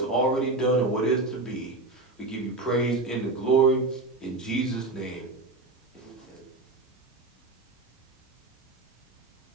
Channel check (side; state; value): left; quieter; 3.2 dB